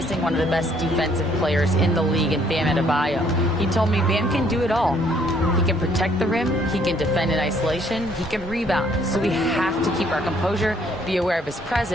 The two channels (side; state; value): both; normal; correlation 0.64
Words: one of the best defensive players in the league in Bam Adebayo. He told me Bam can do it all. He can protect the rim, he can defend in isolation, he can rebound. So we have to keep our composure, be aware of his